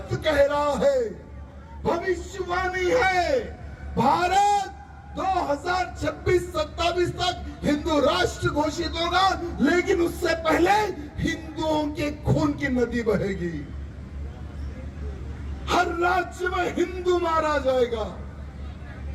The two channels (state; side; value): identical; both; correlation 1.00